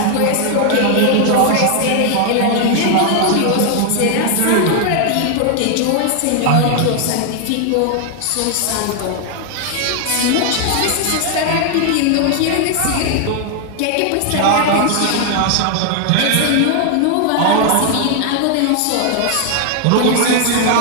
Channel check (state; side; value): different; both; correlation 0.00